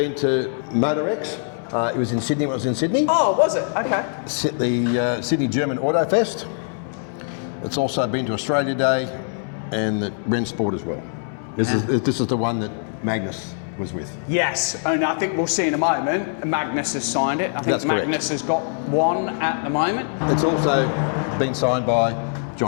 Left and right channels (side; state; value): right; silent; digital silence